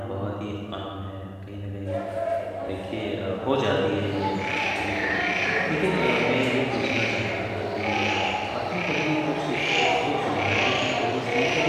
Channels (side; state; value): both; identical; correlation 1.00